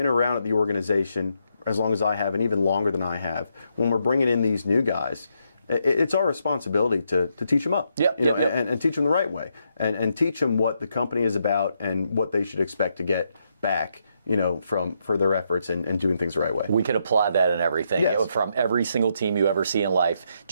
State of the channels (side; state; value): both; inverted; correlation -0.79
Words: around at the organization as long as I have, and even longer than I have, when we're bringing in these new guys, it's our responsibility to teach them up, and teach them the right way, and teach them what the company is about and what they should expect to get back, for their efforts and doing things the right way. We can apply that in everything. Yes. From every single team you ever see in life.